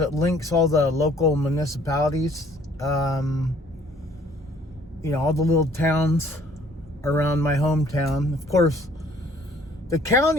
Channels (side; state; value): both; normal; correlation 0.58